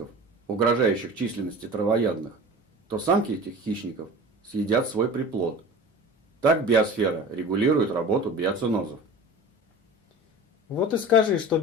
угрожающих численности травоядных, то самки этих хищников съедят свой приплод. Так биосфера регулирует работу биоценозов. Вот и скажи, что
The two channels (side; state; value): both; normal; correlation 0.37